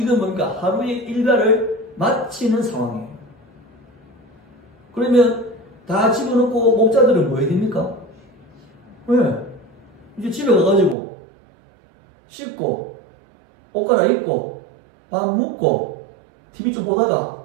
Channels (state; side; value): drops out; left; at 11.0 s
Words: 이건 뭔가 하루의 일과를 마치는 상황이에요. 그러면 다 집어넣고 목자들은 뭐 해야 됩니까? 왜? 이제 집에 가가지고 씻고 옷 갈아입고 밥 먹고 TV 좀 보다가